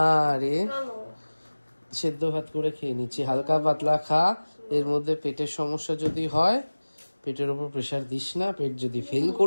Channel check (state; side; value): inverted; both; correlation -1.00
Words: রে, সেদ্ধ ভাত করে খেয়ে নিচ্ছি, হালকা পাতলা খা। এর মধ্যে পেটের সমস্যা যদি হয়, পেটের উপর প্রেসার দিস না, পেট যদি ফেল